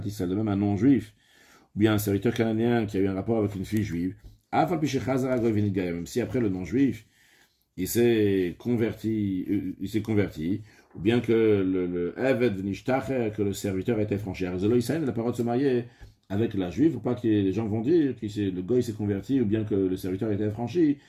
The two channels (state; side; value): identical; both; correlation 1.00